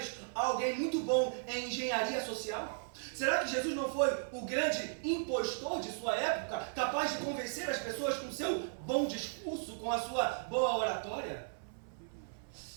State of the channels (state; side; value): silent; left; 54 dB below the other